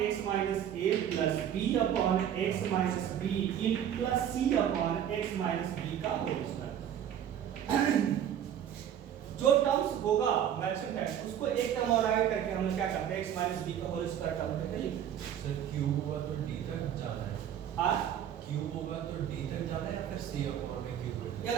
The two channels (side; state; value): left; quieter; 9.8 dB